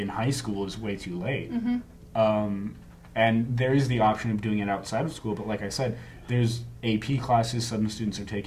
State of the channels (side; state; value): both; identical; correlation 1.00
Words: high school is way too late. And there is the option of doing it outside of school, but like I said, there's AP classes some students are